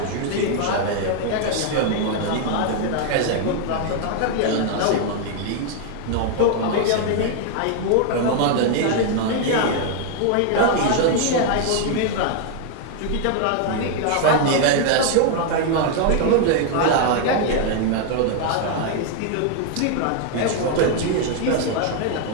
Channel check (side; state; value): both; different; correlation 0.00